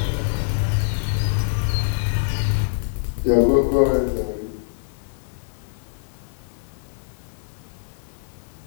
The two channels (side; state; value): right; silent; digital silence